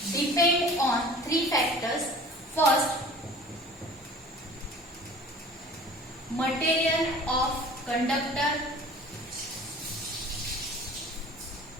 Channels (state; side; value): normal; both; correlation 0.45